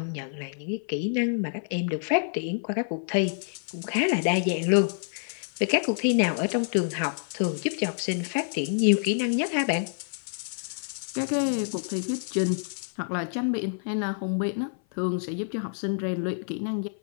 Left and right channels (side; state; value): right; silent; 56 dB below the other